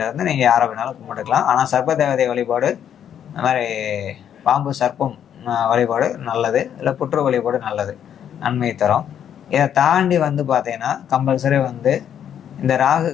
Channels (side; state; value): right; quieter; 9.3 dB